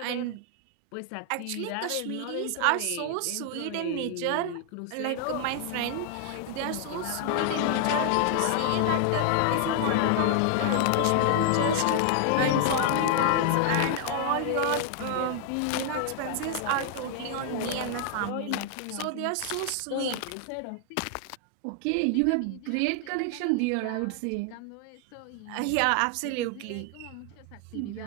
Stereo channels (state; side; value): different; both; correlation 0.00